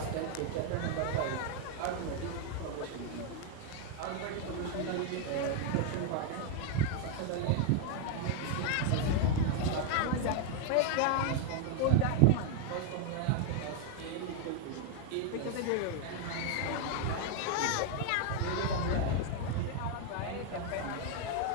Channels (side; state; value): both; different; correlation 0.01